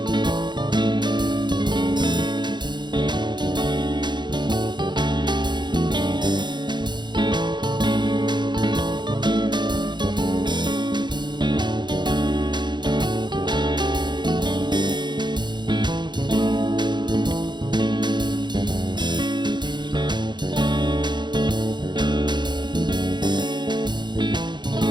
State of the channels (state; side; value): late; left; 0.21 ms